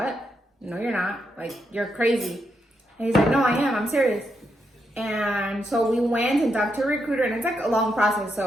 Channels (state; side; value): normal; both; correlation 0.81